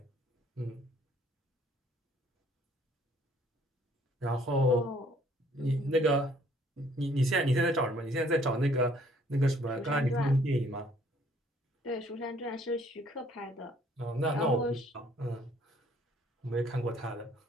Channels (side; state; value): both; normal; correlation 0.61